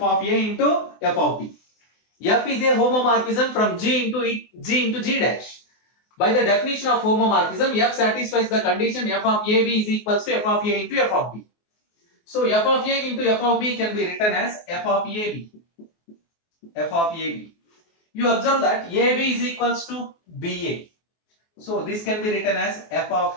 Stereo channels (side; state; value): right; late; 24 ms